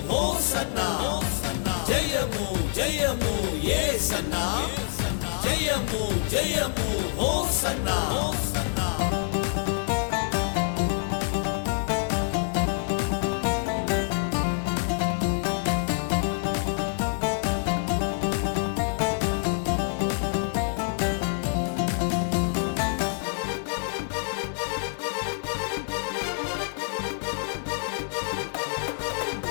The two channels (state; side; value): silent; right; digital silence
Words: హోసన్నా. జయము జయము యేసన్నా, జయము జయము హోసన్నా.